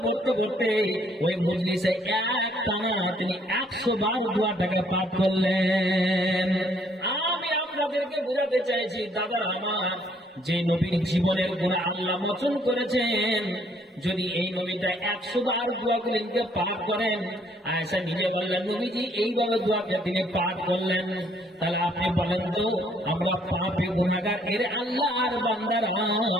পড়তে পড়তে ওই মজলিসে এক টানা তিনি 100 বার দোয়াটাকে পাঠ করলেন। আমি আপনাদেরকে বোঝাতে চাইছি দাদা আমার, যে নবীর জীবনের গুনাহ আল্লাহ মোচন করেছেন, যদি এই নবীটা 100 বার দোয়াগুলিকে পাঠ করেন, আয়েশা নিজে বললেন নবীজি এইভাবে দোয়াকে তিনি পাঠ করলেন, তাহলে আপনি বলেন তো আমরা পাপী গুনাহগার এর আল্লাহর বান্দারা,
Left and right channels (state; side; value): normal; both; correlation 0.65